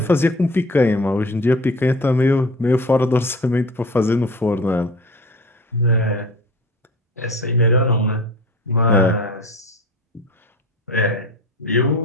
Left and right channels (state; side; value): normal; both; correlation 0.38